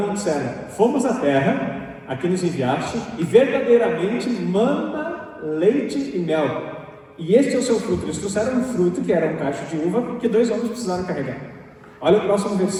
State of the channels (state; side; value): identical; both; correlation 1.00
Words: e disseram: fomos à terra a que nos enviaste, e verdadeiramente mana, leite e mel, e este é o seu fruto. Eles trouxeram um fruto que era um cacho de uva, que 2 homens precisaram carregar. Olha o próximo